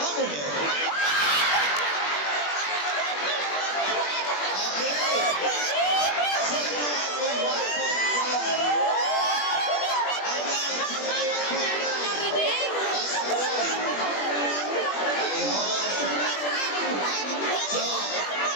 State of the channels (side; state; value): right; late; 21 ms